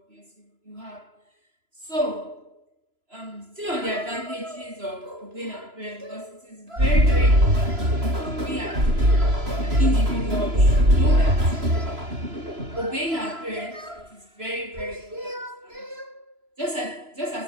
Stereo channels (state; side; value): late; left; 3.0 ms